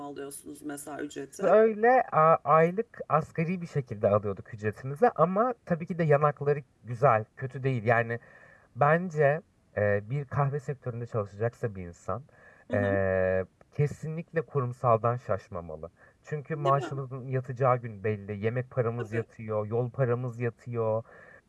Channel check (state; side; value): identical; both; correlation 1.00